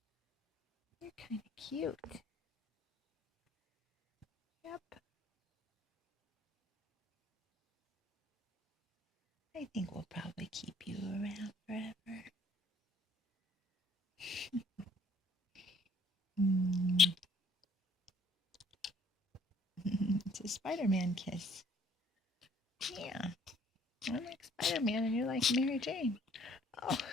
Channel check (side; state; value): both; normal; correlation 0.60